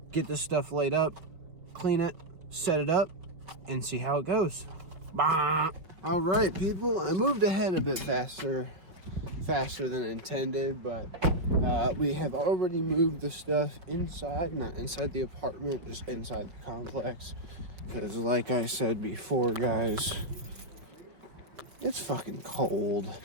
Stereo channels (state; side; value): late; left; 5.2 ms